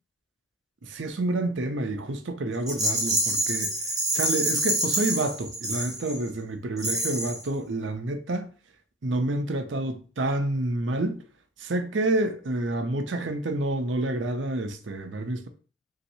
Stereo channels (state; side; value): normal; both; correlation 0.34